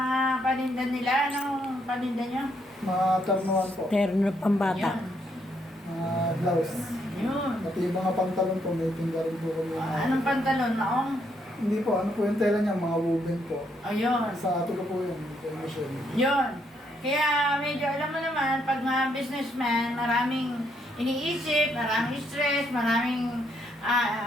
paninda nila, anong paninda nyo? Mga ternuan po. Terno pambata. Mga blouse. Yun. Pati yung mga pantalon po, may tingga rin po kami. Anong pantalon? Naong? Hindi po, ano po yung tela niya, mga woven po. Ayun. Sa ato ko po yun, kay Michelle. Yun. Kaya medyo alam mo naman, pag mga businessman, maraming iniisip, maraming stress, maraming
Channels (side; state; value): both; normal; correlation 0.74